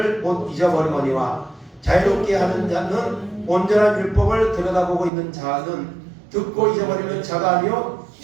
못 잊어버리거니와, 자유롭게 하는 자는 온전한 율법을 들여다보고 있는 자는 듣고 잊어버리는 자가 아니요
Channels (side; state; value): left; drops out; at 5.1 s